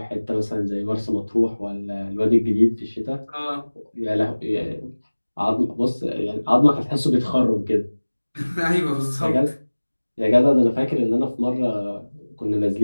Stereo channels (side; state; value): both; inverted; correlation -1.00